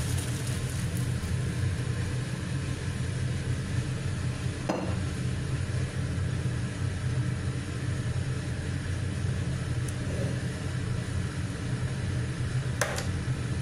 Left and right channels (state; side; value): identical; both; correlation 1.00